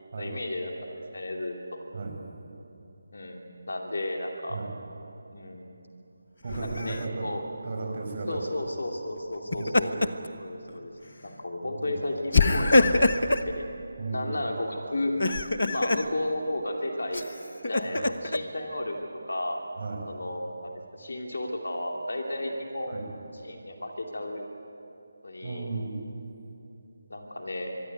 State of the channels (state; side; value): inverted; both; correlation -0.89